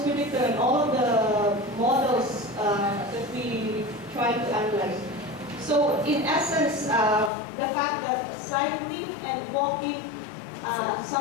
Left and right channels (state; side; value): drops out; right; at 7.3 s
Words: predictor in all of the models that we try to analyze. So in essence, the fact that cycling and walking